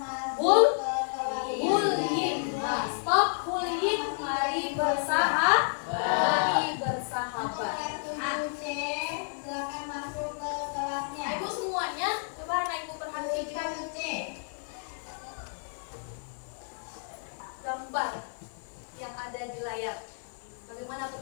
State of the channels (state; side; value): silent; right; digital silence